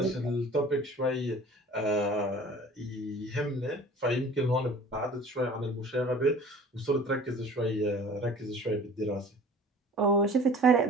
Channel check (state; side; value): normal; both; correlation 0.46